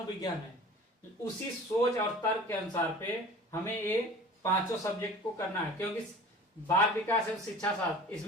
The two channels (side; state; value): both; normal; correlation 0.42